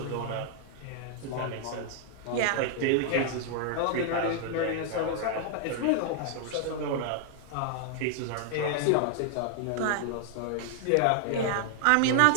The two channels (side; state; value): both; different; correlation 0.00